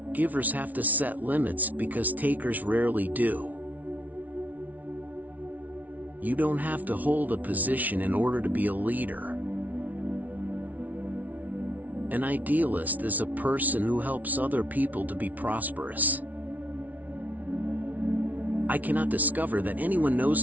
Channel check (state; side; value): late; left; 0.075 ms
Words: Givers have to set limits because takers rarely do. You don't have to hold a position in order to be a leader. An idealist is a person who helps other people to be prosperous. I cannot discover that anyone